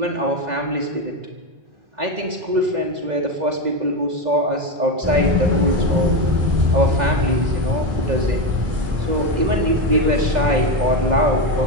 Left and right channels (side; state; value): left; late; 2.0 ms